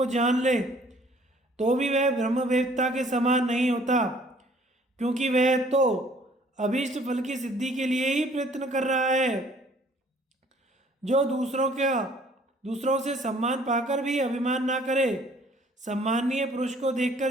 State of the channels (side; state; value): both; normal; correlation 0.57